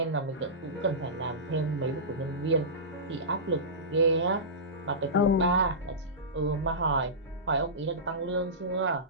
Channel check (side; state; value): both; normal; correlation -0.19